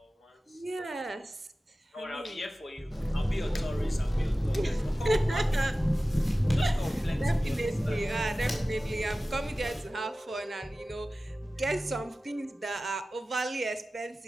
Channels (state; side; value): normal; both; correlation 0.96